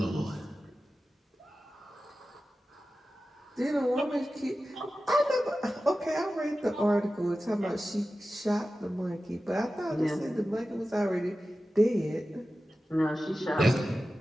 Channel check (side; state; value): both; normal; correlation 0.94